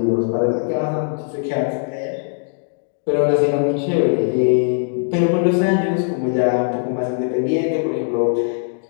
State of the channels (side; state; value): right; silent; digital silence